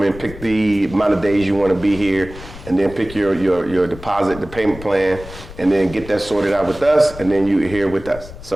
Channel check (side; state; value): left; noise; rumble, 15 dB below the sound